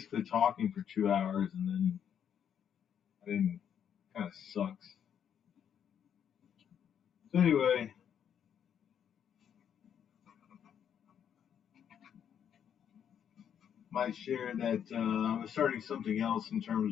talking for 2 hours, and then I didn't. Kind of sucks. So anyway, might share that I was starting something else in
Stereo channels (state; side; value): quieter; right; 8.7 dB